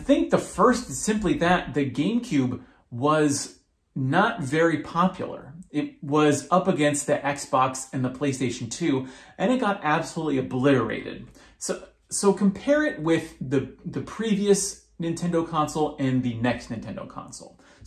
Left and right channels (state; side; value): identical; both; correlation 1.00